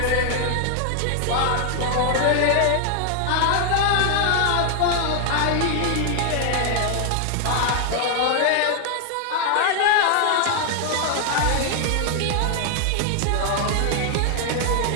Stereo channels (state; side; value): different; both; correlation 0.00